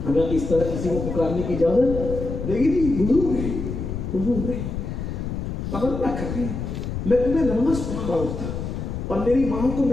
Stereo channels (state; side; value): noise; left; rumble, 5 dB below the sound